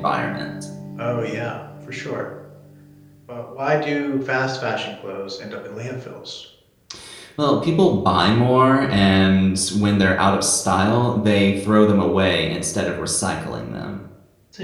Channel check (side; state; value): both; identical; correlation 1.00